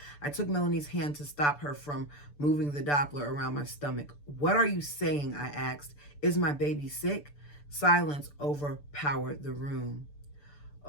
I took Melanie's hand to stop her from moving the Doppler around my stomach. What are you saying? I asked. Is my baby sick? Silence overpowered the room.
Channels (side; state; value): right; late; 6.9 ms